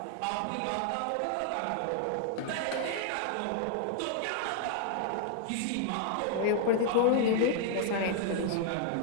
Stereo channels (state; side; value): different; both; correlation -0.01